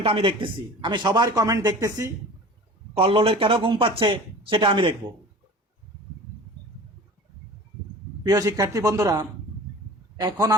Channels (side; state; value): both; normal; correlation 0.40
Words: আমি দেখতেছি, আমি সবার কমেন্ট দেখতেছি। কল্লোলের কেন ঘুম পাচ্ছে সেটা আমি দেখব। প্রিয় শিক্ষার্থী বন্ধুরা, এখন